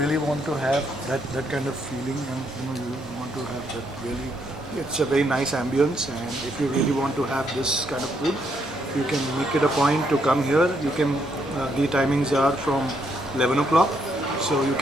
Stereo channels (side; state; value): both; normal; correlation 0.74